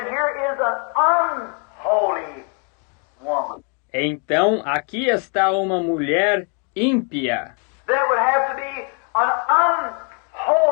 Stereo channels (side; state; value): right; quieter; 38.9 dB